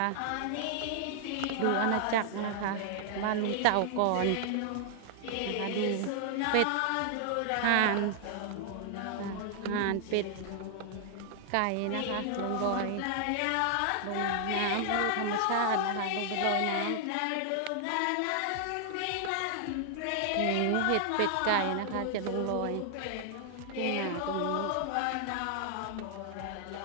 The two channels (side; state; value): both; different; correlation 0.00